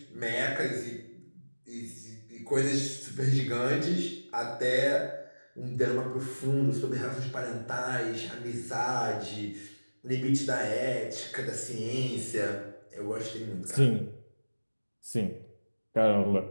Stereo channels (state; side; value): inverted; both; correlation -1.00